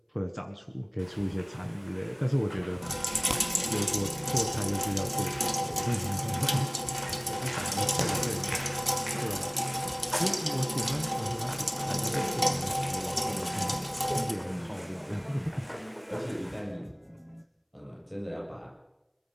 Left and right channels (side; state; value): both; identical; correlation 1.00